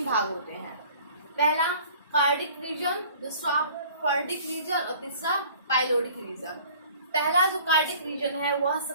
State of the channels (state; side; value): inverted; both; correlation -0.50